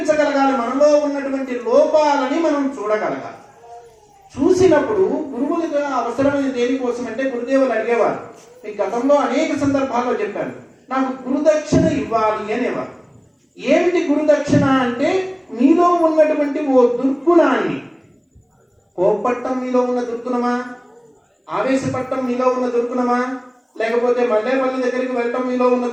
మనలో ఉన్నటువంటి లోపాలని మనం చూడగలగాలి. చూసినప్పుడు గురువులుగా అవసరమైన దేనికోసం అంటే గురుదేవులు అడిగేవారు. ఈ గతంలో అనేక సందర్భాల్లో చెప్పాను, నాకు గురుదక్షిణ ఇవ్వాలి అనేవారు. ఏమిటి గురుదక్షిణ అంటే మీలో ఉన్నటువంటి ఓ దుర్గుణాన్ని, కోపట్టం మీలో ఉన్న దుర్గుణమా, ఆవేశపట్టం మీలో ఉన్న దుర్గుణమా, లేకపోతే మల్లేపల్లి దగ్గరికి వెళ్ళటం మీలో ఉన్న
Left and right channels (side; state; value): both; identical; correlation 1.00